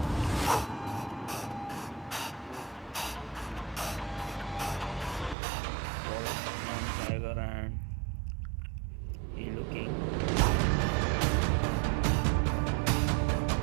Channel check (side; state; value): left; drops out; at 5.4 s